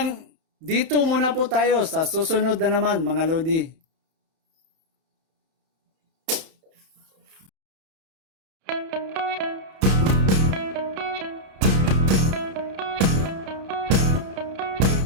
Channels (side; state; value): left; late; 31 ms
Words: dito muna po tayo sa susunod na naman, mga lodi.